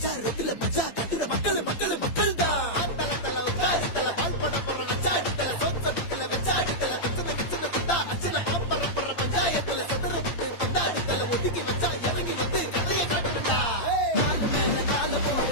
ரோட்ல மஜா கட்டுற மக்கள் மக்கள் மக்கள் தான் தல தல உட்காரு தல பால் போட போறோம் அச்சாடு தல சோச்சடுக்கல வச்சாடு தல பிரச்சனை கிச்சனை குட்டா அச்சனை பாப்பற போற பஞ்சாயத்துல சதுர விட்டு பந்தாடு தல ஒதுக்கி வச்சா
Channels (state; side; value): late; right; 8.8 ms